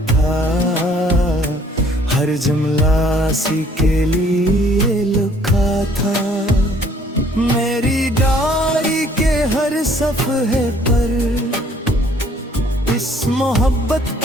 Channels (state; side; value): normal; both; correlation 0.60